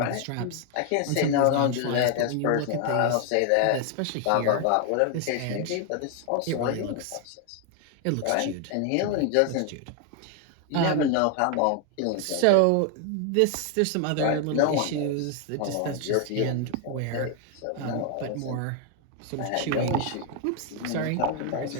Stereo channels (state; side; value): different; both; correlation 0.00